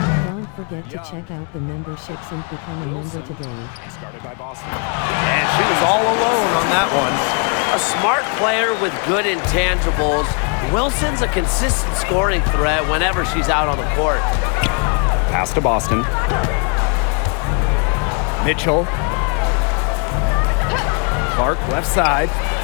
Don't forget to check out the memberships and become a member today. Started by Boston. And she was all alone on that one. A smart player with good intangibles. Wilson's a consistent scoring threat whenever she's out on the court. Pass to Boston. Mitchell. Clark left side.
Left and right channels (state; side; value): quieter; right; 36.4 dB